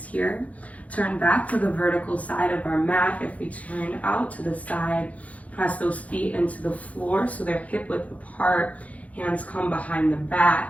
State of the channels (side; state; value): right; late; 0.068 ms